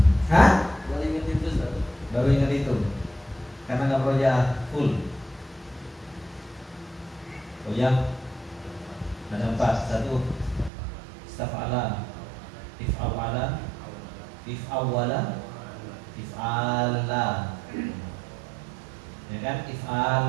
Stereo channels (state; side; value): drops out; left; at 10.7 s